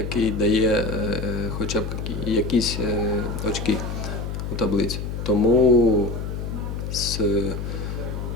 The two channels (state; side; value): noise; left; hum, 5 dB below the sound